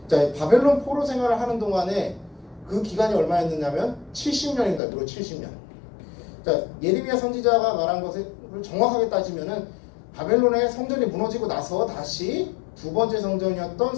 자, 바벨론 포로 생활을 하는 동안에 그 기간이 얼마였느냐면 70년입니다. 무려 70년. 자, 예레미야 선지자가 말한 것을 정확하게 따지면은 바벨론의 성전이 무너지고 나서 다시 두 번째 성전이었던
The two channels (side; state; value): right; drops out; at 4.8 s